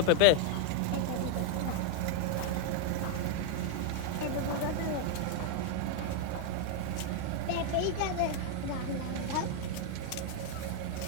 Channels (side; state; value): both; different; correlation 0.00